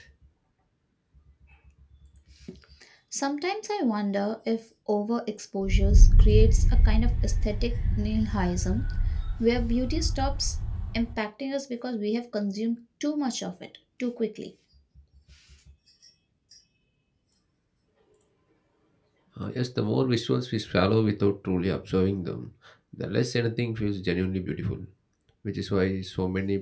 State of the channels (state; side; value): identical; both; correlation 1.00